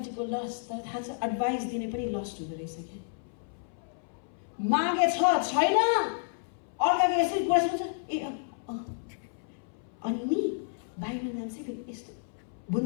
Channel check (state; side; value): silent; right; 57 dB below the other